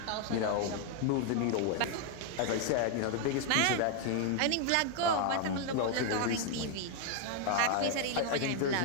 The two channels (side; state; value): both; different; correlation 0.00